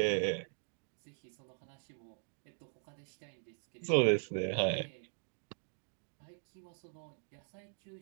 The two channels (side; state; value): left; silent; digital silence